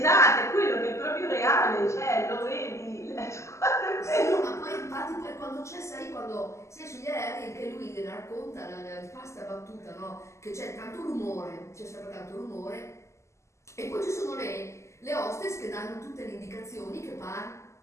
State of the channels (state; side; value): late; right; 0.13 ms